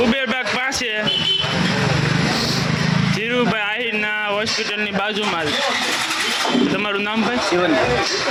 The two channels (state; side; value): identical; both; correlation 1.00